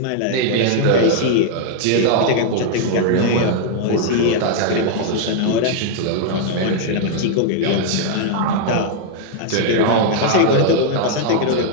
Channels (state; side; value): different; both; correlation 0.00